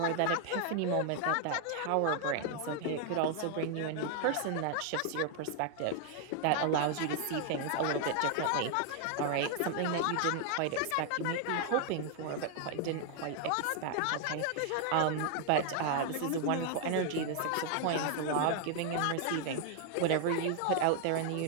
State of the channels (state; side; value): different; both; correlation 0.00